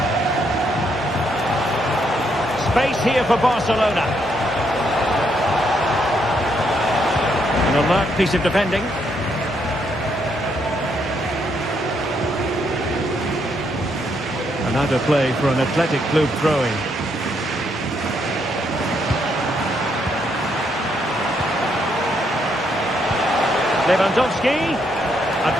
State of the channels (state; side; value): normal; both; correlation 0.75